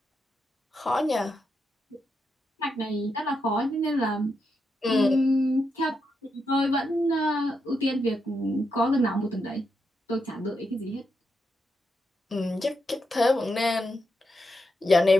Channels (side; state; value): both; normal; correlation 0.83